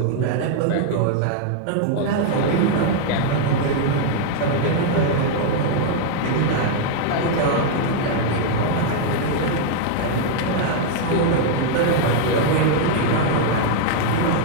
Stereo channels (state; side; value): different; both; correlation 0.00